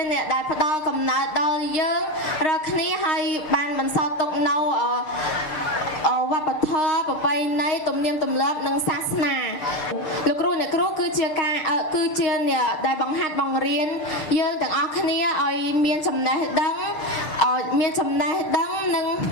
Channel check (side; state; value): right; late; 6.5 ms